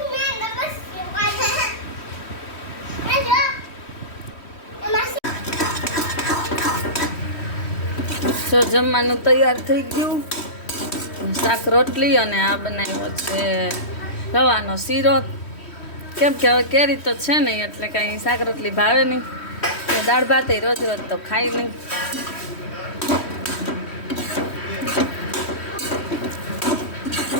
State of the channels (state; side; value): late; right; 3.1 ms